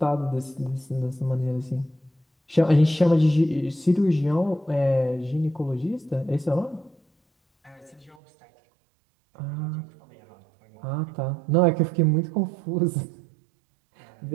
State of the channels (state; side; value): drops out; left; at 8.2 s